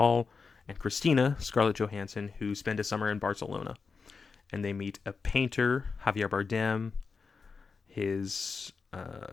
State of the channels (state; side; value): quieter; right; 4.9 dB